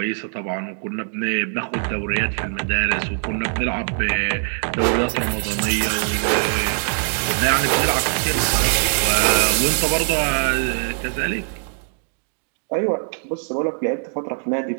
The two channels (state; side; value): silent; left; 64 dB below the other